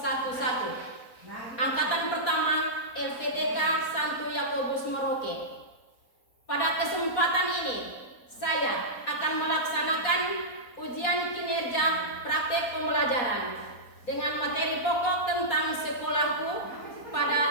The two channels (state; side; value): late; right; 4.2 ms